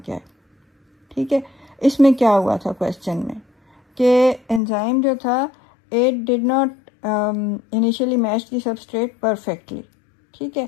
है, ठीक है। इसमें क्या हुआ था क्वेश्चन में कि एंजाइम जो था it did not initially match the substrate perfectly, ठीक है।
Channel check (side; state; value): right; drops out; at 4.6 s